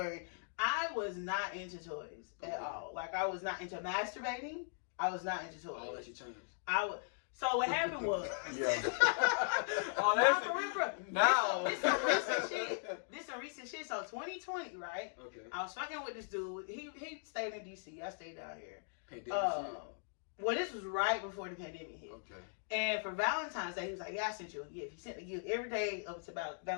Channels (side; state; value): right; silent; digital silence